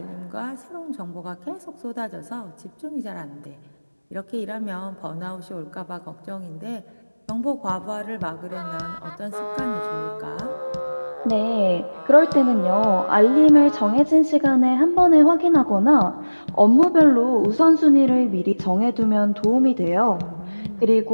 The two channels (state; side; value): inverted; both; correlation -1.00